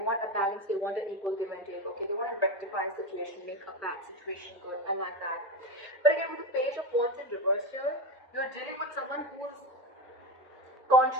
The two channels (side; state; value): both; normal; correlation 0.18